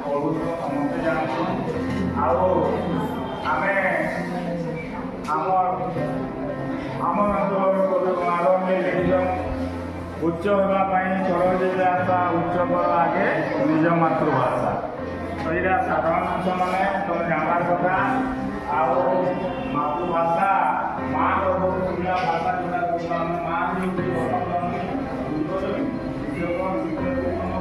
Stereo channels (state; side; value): identical; both; correlation 1.00